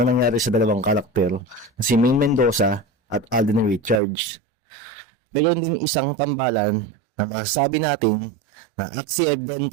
nangyari sa dalawang karakter na si Ming Mendoza at Alden Richards. Ngayon din isang tambalan na masasabi natin na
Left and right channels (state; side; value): drops out; left; at 4.0 s